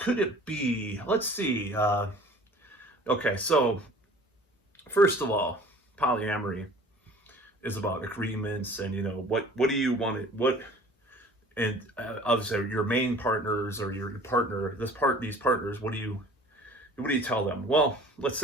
it be? Let's see. Okay, so first of all, polyamory is about agreements, and what do you want to and obviously your main partners or your partner, these partners. What do you tell them? Well, let's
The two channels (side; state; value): both; normal; correlation 0.48